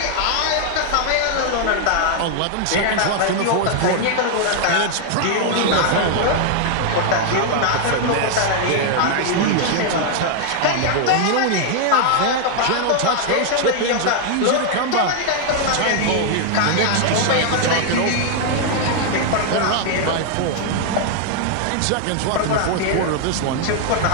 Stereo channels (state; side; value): different; both; correlation 0.00